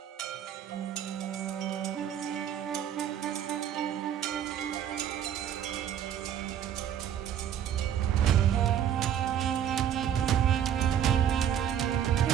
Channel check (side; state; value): left; quieter; 9.7 dB